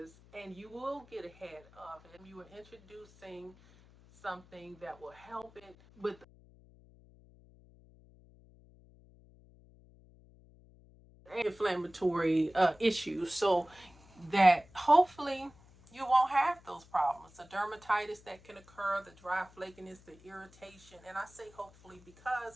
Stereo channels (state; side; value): noise; left; hum, 25 dB below the sound